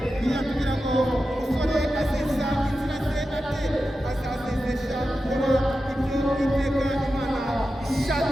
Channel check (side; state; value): both; normal; correlation 0.91